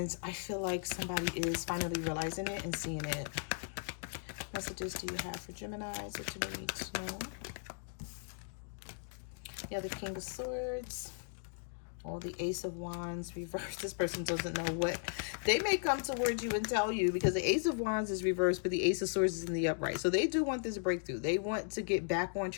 I feel like somebody is finally realizing it and seeing it. What messages do you have for Geminis that you need to know? Yeah, the King of Swords. Or the Ace of Wands reversed. This person doesn't know what. They may come towards you and tell you, because the Ace of Wands is reversed, but the Ace of Swords is in the upright. So they do want this breakthrough. They want to get back on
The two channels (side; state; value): right; silent; digital silence